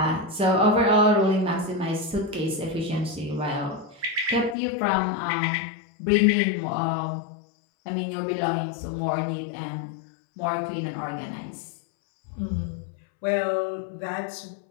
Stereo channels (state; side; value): drops out; right; at 4.5 s